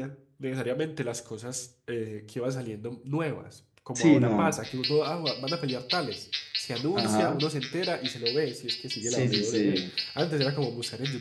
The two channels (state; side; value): identical; both; correlation 1.00